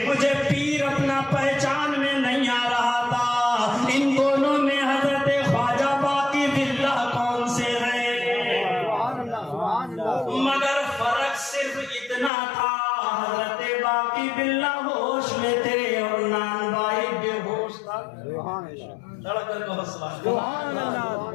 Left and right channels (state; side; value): drops out; right; at 12.3 s